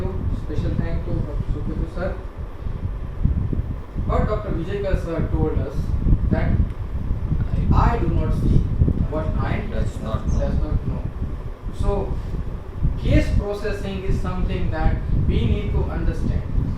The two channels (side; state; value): both; identical; correlation 1.00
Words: Special thank to Dr. Suketu sir. But Dr. Vijayakar sir told us that I do not see what mind Does not know. So, case processing is something that we need to understand.